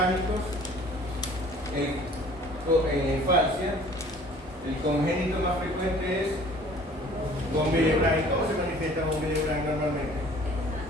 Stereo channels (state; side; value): normal; both; correlation 0.51